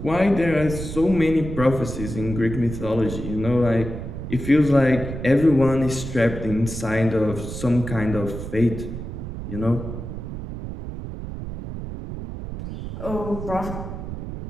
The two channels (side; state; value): right; noise; rumble, 8 dB below the sound